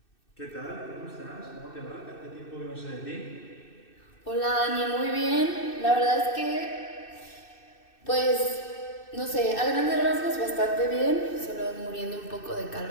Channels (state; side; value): late; right; 2.6 ms